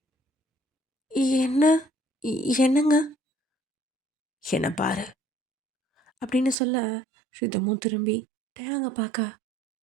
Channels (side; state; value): left; drops out; at 6.6 s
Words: என்ன? என்னங்க? என்ன பாரு அப்படின்னு சொல்ல ரிதமும் திரும்பி டேங்க பார்க்க